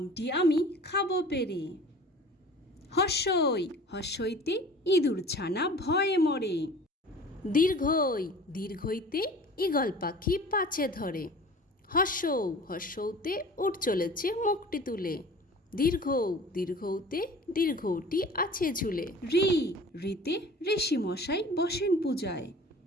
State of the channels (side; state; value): both; normal; correlation 0.43